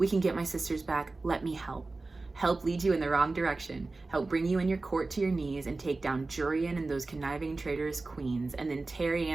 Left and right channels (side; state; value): left; quieter; 3.4 dB